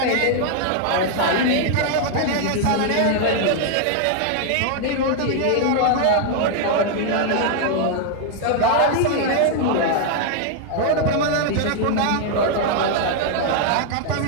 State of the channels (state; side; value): different; both; correlation 0.00